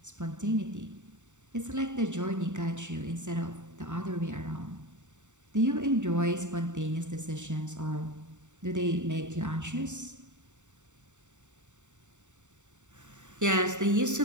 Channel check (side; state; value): left; late; 0.84 ms